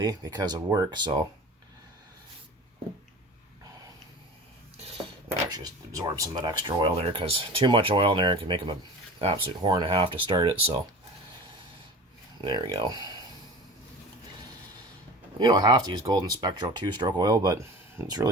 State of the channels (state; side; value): normal; both; correlation 0.37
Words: because of work, so I actually just absorb some of that extra oil there because too much oil in there can make them an absolute whore and a half to start it, so there we go. You don't have to use Golden Spectral 2-stroke oil, but it's